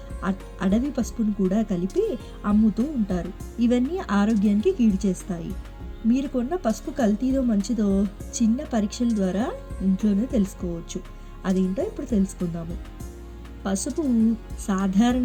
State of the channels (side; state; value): both; identical; correlation 1.00